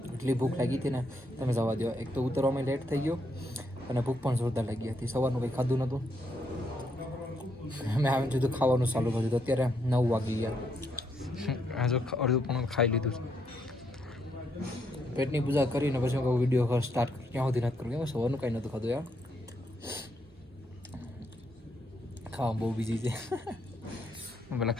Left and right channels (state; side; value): normal; both; correlation 0.76